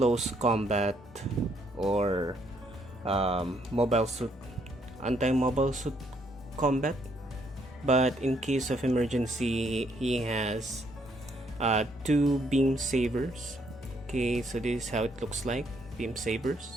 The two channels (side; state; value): both; normal; correlation 0.71